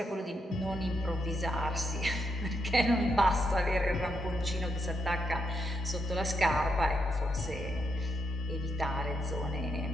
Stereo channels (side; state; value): both; normal; correlation 0.81